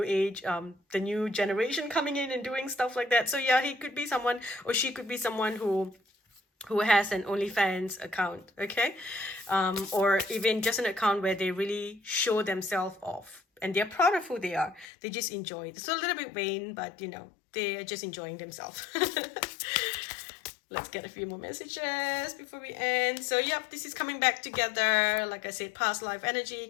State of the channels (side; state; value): right; drops out; at 14.9 s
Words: age, the new generation coming in and doing stuff like that. So yeah, he could be someone, or she could be someone who has an OnlyFans account, okay? Or even just an account where they really show themselves off and they're proud of who they are. They just enjoy it. It's a little bit vain, but they are just enjoying themselves. Let's get a few more messages before we end. So yep, this is coming back together. Like I said, past life energy